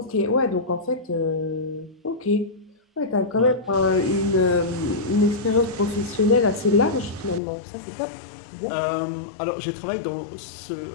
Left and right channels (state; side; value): drops out; right; at 7.4 s